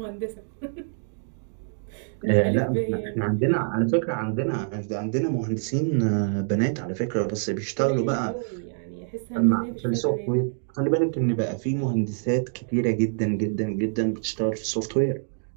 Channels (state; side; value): silent; left; digital silence